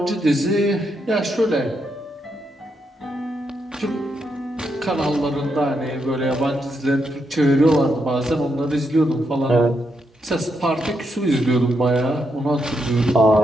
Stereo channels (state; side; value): normal; both; correlation 0.81